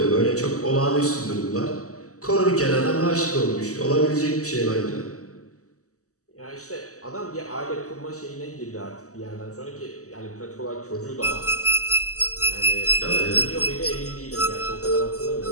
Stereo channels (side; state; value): right; late; 0.66 ms